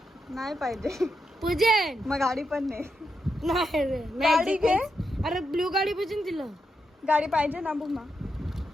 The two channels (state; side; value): normal; both; correlation 0.84